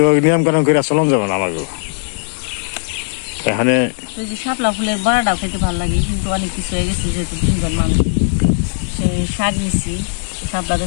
ওই নিয়ম কানুন করে চলন যাবে না আমাকে। এখানে শাপলা ফুলের বড়াটাও খেতে ভালো লাগে, কিন্তু অনেক কিছু হয়ে গেছে যেহেতু 3 জন মানুষ। সেই শাক নিছি, শাপলাতে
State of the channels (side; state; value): right; silent; 68 dB below the other